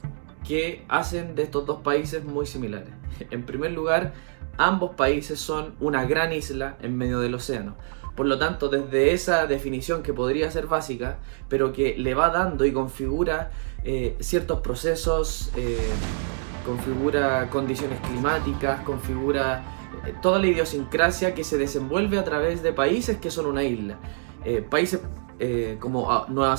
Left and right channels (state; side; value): silent; left; digital silence